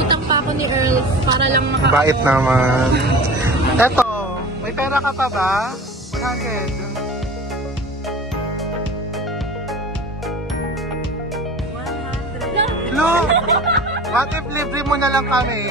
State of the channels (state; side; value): normal; both; correlation 0.38